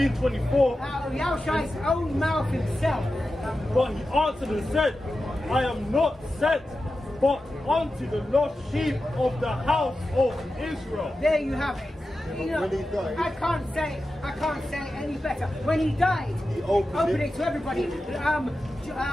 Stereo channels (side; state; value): both; normal; correlation 0.92